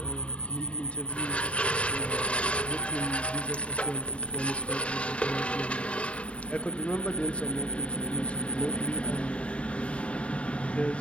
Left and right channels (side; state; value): right; late; 0.061 ms